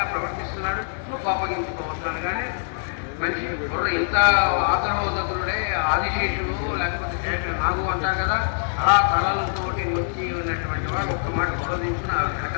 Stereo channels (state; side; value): silent; right; digital silence